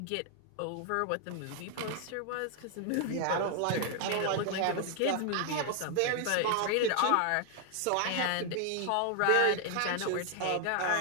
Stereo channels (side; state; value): both; different; correlation 0.00